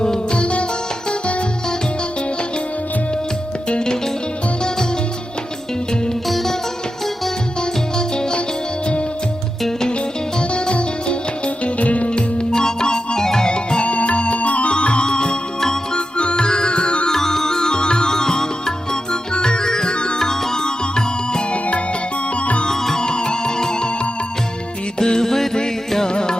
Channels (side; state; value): both; normal; correlation 0.90